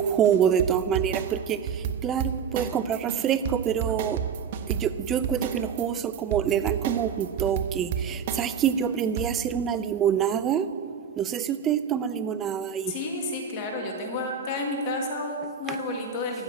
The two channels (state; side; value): quieter; left; 6.9 dB